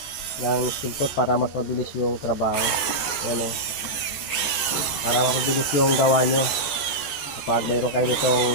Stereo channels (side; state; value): right; late; 14 ms